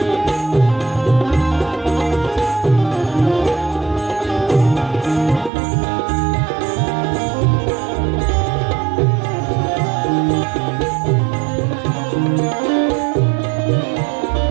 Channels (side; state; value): left; drops out; at 5.5 s